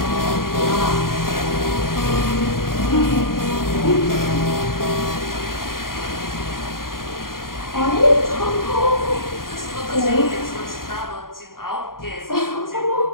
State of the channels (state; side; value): late; right; 0.91 ms